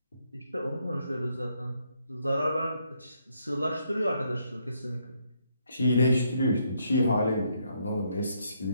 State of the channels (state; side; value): inverted; both; correlation -0.74